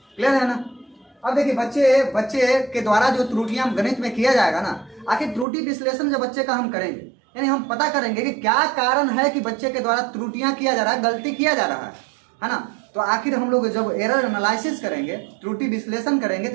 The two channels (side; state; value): left; drops out; at 5.5 s